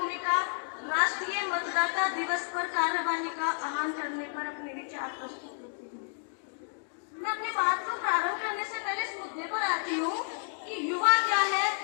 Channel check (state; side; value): silent; right; 57 dB below the other